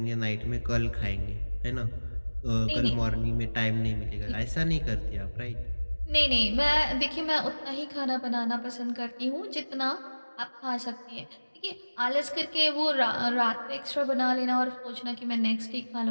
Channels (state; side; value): inverted; both; correlation -1.00